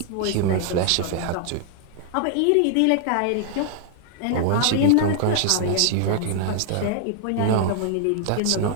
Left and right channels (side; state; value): both; different; correlation 0.00